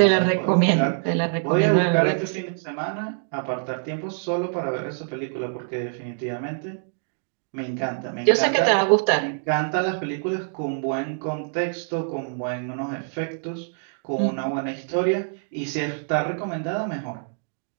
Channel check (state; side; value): silent; left; digital silence